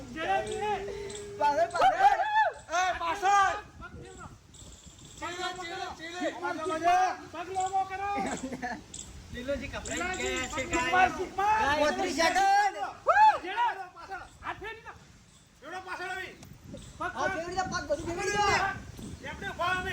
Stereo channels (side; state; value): both; identical; correlation 1.00